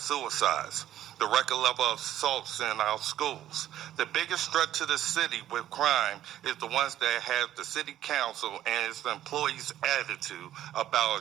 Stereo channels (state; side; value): quieter; left; 12.4 dB